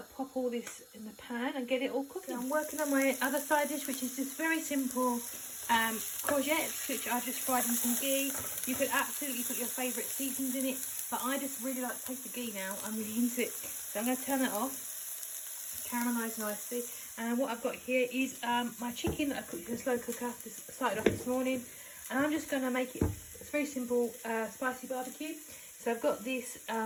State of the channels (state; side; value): identical; both; correlation 1.00